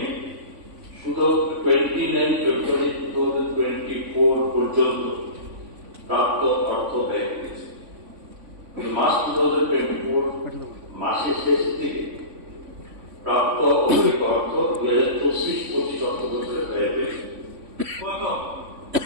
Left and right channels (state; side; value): late; left; 3.5 ms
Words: শুধু 29 ফেব্রুয়ারি 2024 পর্যন্ত প্রাপ্ত অর্থ ব্যয় করেছে। মার্চ 2024 মাসের শেষ থেকে প্রাপ্ত অতিরিক্ত অর্থ 2024-25 অর্থবছরে ব্যয় হয়েছে।